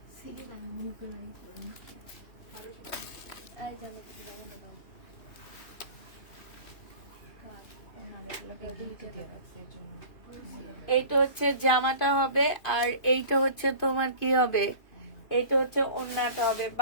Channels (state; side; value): late; right; 2.5 ms